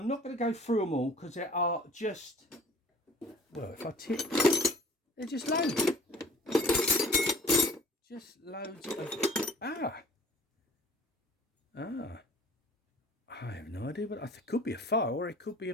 not going to go through them all because there are just, well, if I tip, they're just loads. Just loads of, I have no idea, but it could be a file or it could be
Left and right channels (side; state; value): both; normal; correlation 0.49